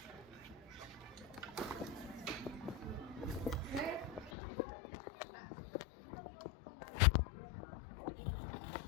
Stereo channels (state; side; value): drops out; right; at 4.3 s